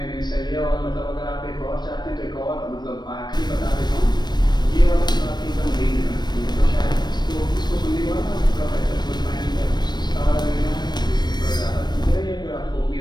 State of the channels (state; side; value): late; right; 0.21 ms